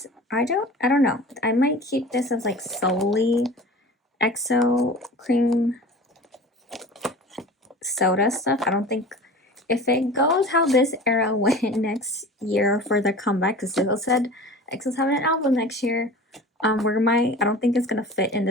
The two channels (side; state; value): both; normal; correlation 0.38